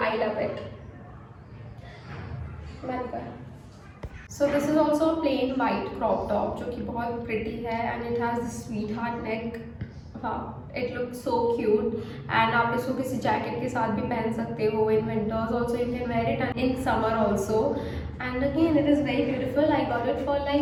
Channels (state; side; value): identical; both; correlation 1.00